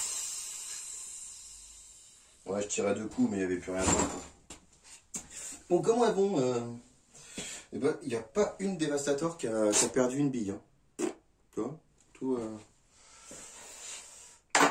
Ouais, je tirais 2 coups mais il n'y avait plus rien d'autre. Bon, comment elles vont eh ben, il n'y a pas une Dévastator qui a perdu une bille. Hein. Tu vois tout,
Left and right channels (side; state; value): both; identical; correlation 1.00